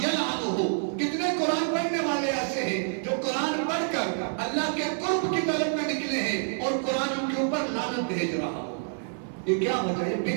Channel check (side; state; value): left; silent; digital silence